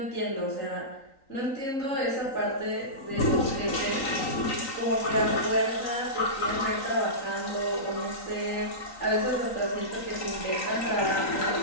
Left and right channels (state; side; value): late; right; 3.9 ms